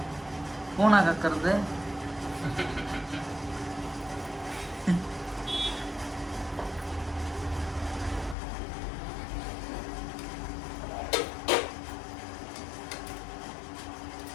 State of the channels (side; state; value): right; drops out; at 8.3 s